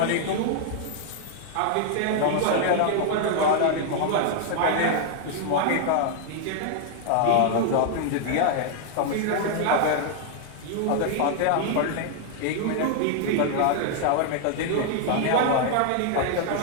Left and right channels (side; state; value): both; different; correlation 0.00